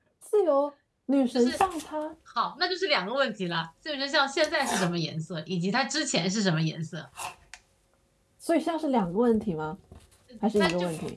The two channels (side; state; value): both; identical; correlation 1.00